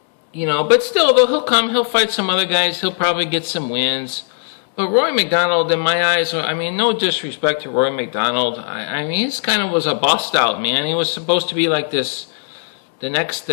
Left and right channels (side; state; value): right; silent; 67 dB below the other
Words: still, though, he'll fight some other guys. He'll probably get some wins. But Rory McDonald, in my eyes, I mean, no disrespect to Rory McDonald. I mean, he's kind of was a bust out, man. He was supposed to be like this, the next